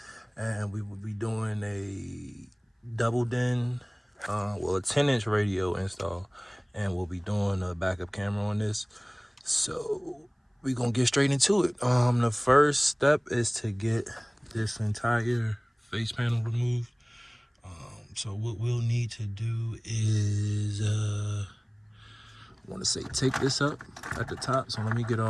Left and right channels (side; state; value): both; identical; correlation 1.00